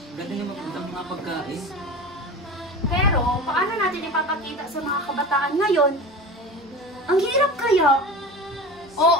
ganda yung mga pagkain. Pero, paano natin ipapakita sa mga kabataan ngayon? Ang hirap kaya.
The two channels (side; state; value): both; normal; correlation 0.32